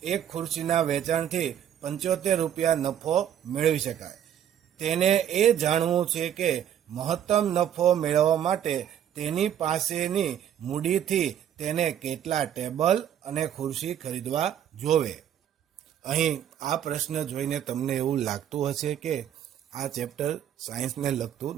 એક ખુરશીના વેચાણથી 75 રૂપિયા નફો મેળવી શકાય. તેને એ જાણવું છે કે મહત્તમ નફો મેળવવા માટે તેની પાસેની મૂડીથી તેને કેટલા ટેબલ અને ખુરશી ખરીદવા જોવે. અહીં આ પ્રશ્ન જોઈને તમને એવું લાગતું હશે કે આ ચેપ્ટર સાયન્સને લગતું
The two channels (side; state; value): left; quieter; 10.0 dB